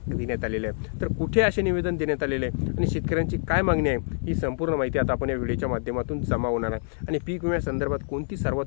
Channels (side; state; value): right; silent; 61 dB below the other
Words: देण्यात आलेले आहे। तर कुठे असे निवेदन देण्यात आलेले आहे आणि शेतकऱ्यांची काय मागणी आहे ही संपूर्ण माहिती आता आपण या व्हिडिओच्या माध्यमातून जमा होणार आहे आणि पीक विम्यासंदर्भात कोणती